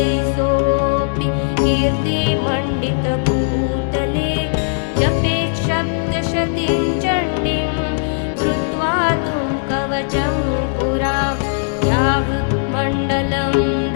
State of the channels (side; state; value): right; silent; 67 dB below the other